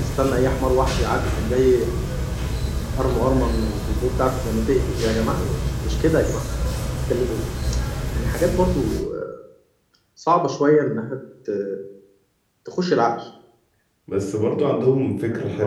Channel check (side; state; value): both; identical; correlation 1.00